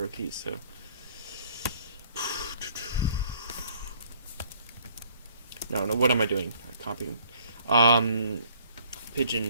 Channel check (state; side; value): inverted; both; correlation -0.60